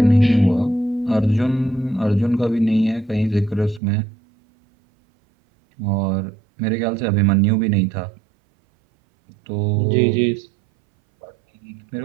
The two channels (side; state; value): left; drops out; at 3.8 s